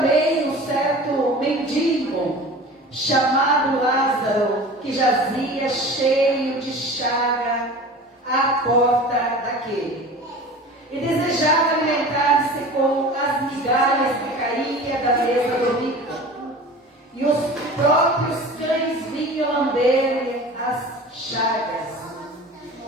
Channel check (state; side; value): normal; both; correlation 0.38